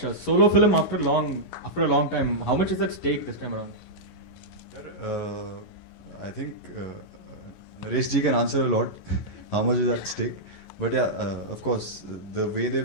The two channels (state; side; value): late; right; 11 ms